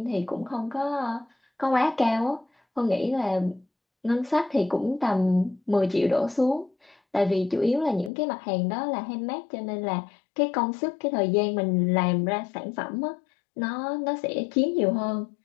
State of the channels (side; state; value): right; drops out; at 8.1 s